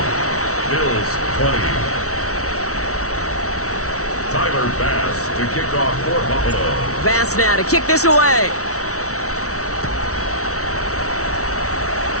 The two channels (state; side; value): late; right; 0.64 ms